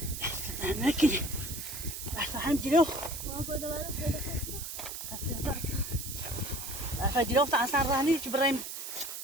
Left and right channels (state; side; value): noise; right; hiss, 7 dB below the sound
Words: نکنی بس هم جلو جلو تا اصلا رانی که برایم